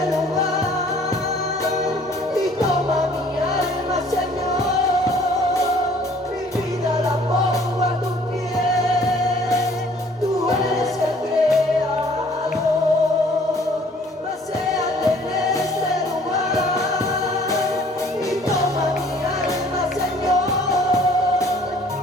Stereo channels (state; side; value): normal; both; correlation 0.56